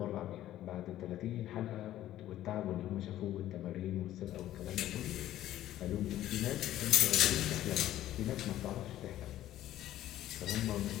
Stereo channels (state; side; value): quieter; right; 13.4 dB